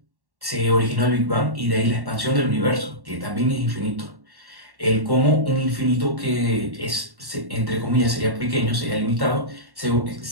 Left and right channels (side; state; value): left; late; 1.1 ms